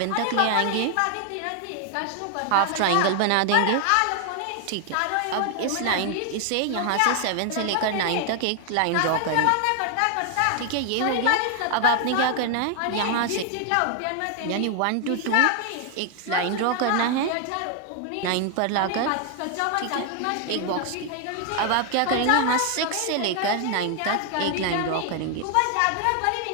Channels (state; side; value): different; both; correlation 0.00